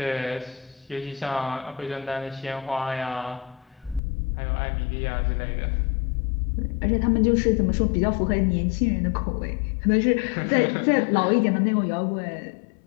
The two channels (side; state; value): right; drops out; at 4.0 s